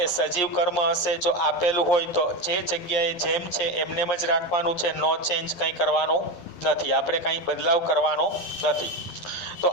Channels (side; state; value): right; late; 11 ms